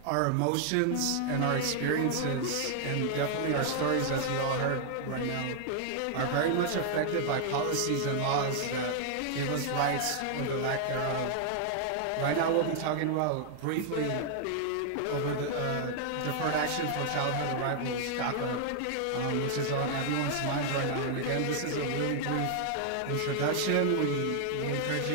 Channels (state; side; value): different; both; correlation 0.00